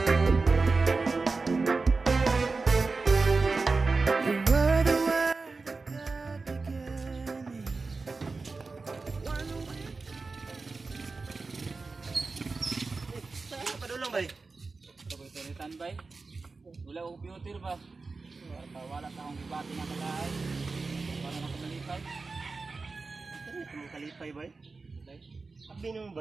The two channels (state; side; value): quieter; left; 4.0 dB